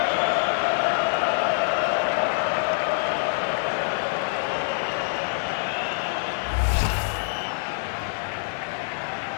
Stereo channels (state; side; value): silent; right; digital silence